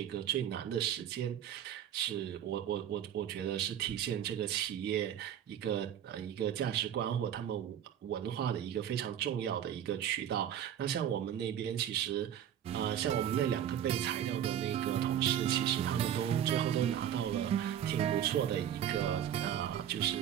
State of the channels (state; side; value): quieter; left; 10.0 dB